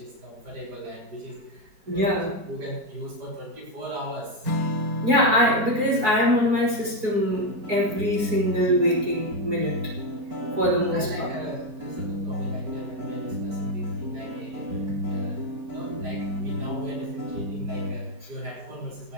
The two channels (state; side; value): late; left; 4.7 ms